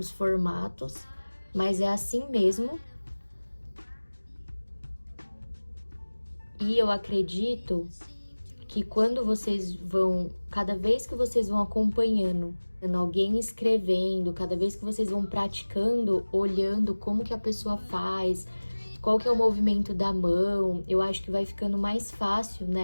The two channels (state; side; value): inverted; both; correlation -1.00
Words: formatos, mas é assim mesmo. E eu acredito que quando vocês vão, cada vez que vocês vão acompanhando alguém escrevendo, cada vez que vocês vão praticando, olhando como que a pessoa faz, qual que é o movimento da mão, eu acho que vai ficando mais fácil,